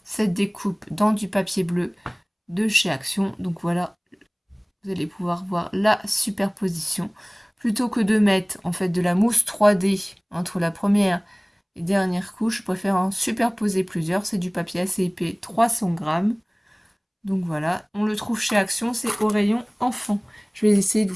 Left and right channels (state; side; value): identical; both; correlation 1.00